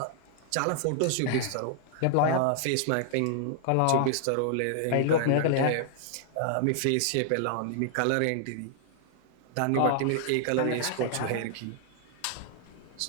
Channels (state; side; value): different; both; correlation 0.00